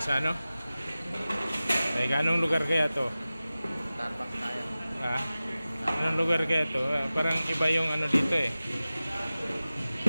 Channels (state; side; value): inverted; both; correlation -0.96